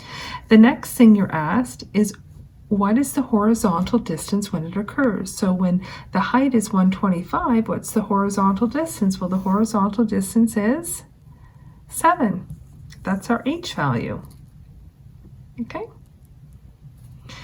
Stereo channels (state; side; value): identical; both; correlation 1.00